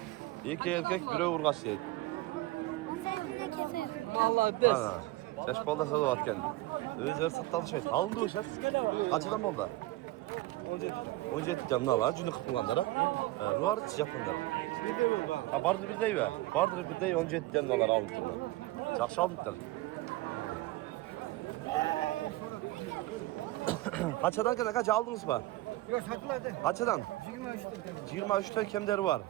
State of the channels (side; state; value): left; quieter; 18.5 dB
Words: İki erkek, biri urg'achi deydi. 18 'dan Vallahi des. Ana. Şaşpalda satıvatken. Özler sattı alışveriş. Alındı o şef. Kaçıdan oldu? 17 tane ne var? Cünü kırkılanlara. Ruvar Japonlar. Bir de bu ha. Ha bardır bir dey be. Bardır bir dey 17 tane dolar alındılar. Жақсы alındılar. Kaçadan kadar kaç aldınız mı? Yok satıldı. Kaçadan? 23'te. 23 tane kemleri var.